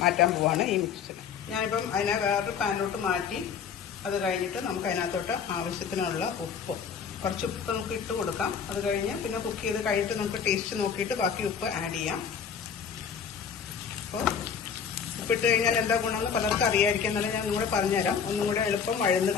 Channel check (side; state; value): right; quieter; 6.9 dB